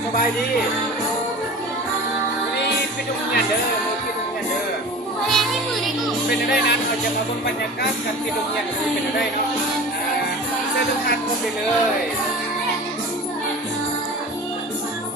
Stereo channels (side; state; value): both; normal; correlation 0.37